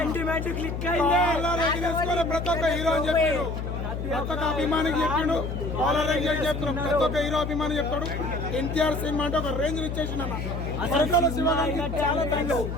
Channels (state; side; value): noise; left; hum, 4 dB below the sound